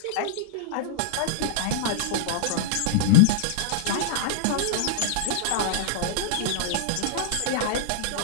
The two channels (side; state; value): both; different; correlation -0.02